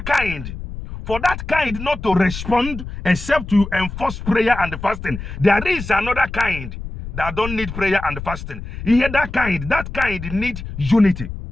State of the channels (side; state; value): left; noise; rumble, 9 dB below the sound